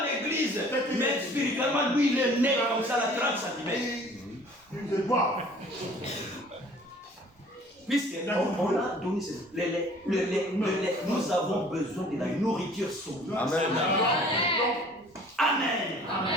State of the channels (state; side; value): normal; both; correlation 0.51